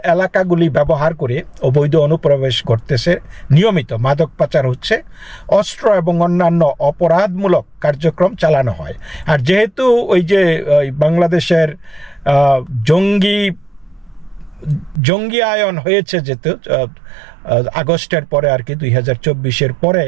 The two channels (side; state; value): left; drops out; at 15.0 s